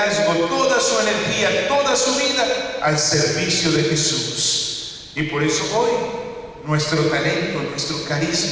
toda su energía, toda su vida al servicio de Jesús. Y por eso hoy, nuestro talento, nuestro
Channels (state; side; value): identical; both; correlation 1.00